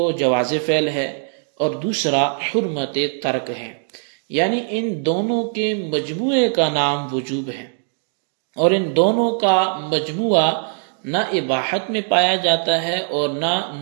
جواز فعل ہے اور دوسرا حرمت ترک ہے، یعنی ان دونوں کے مجموعے کا نام وجوب ہے، اور ان دونوں کا مجموعہ نہ اباحت میں پایا جاتا ہے اور نہ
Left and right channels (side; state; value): left; silent; digital silence